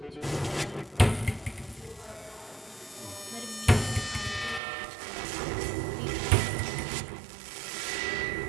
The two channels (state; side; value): drops out; left; at 4.6 s